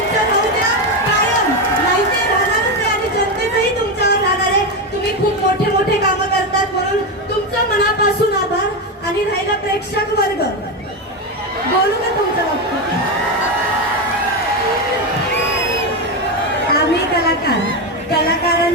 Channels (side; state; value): both; normal; correlation 0.12